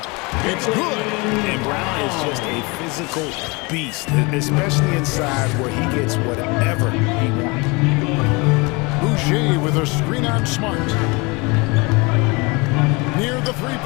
It's good. And Brown is just a physical beast, especially inside where he gets whatever he wants. Boucher with a screen on Smart. Near the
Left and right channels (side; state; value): right; quieter; 27.3 dB